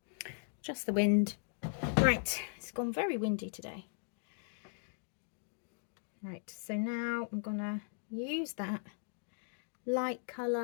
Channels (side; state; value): right; silent; digital silence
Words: Just the wind. Right, it's gone very windy today. Right, so now I'm gonna use that light